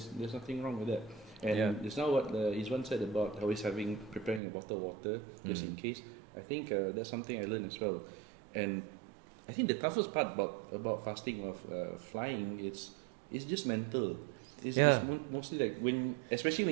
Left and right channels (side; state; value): left; drops out; at 4.4 s